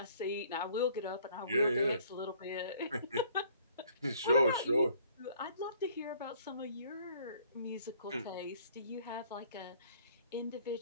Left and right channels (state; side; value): inverted; both; correlation -0.59